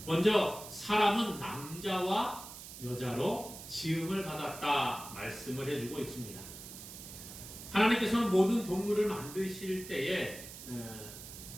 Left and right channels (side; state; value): right; noise; hiss, 13 dB below the sound